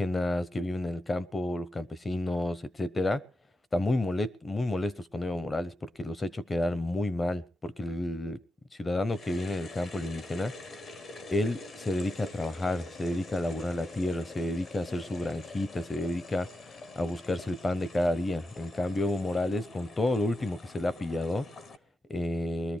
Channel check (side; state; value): both; normal; correlation 0.89